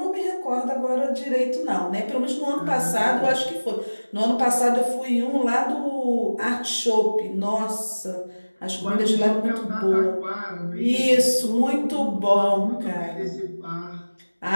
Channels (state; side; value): inverted; both; correlation -1.00